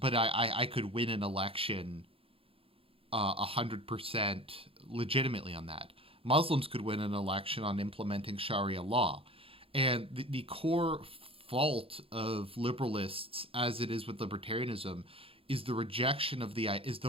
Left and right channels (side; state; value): left; late; 0.27 ms